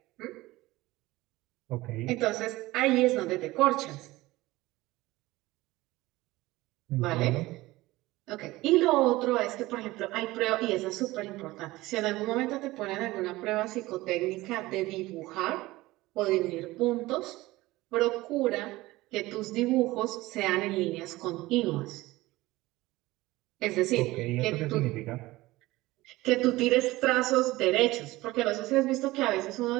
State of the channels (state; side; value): quieter; left; 19.0 dB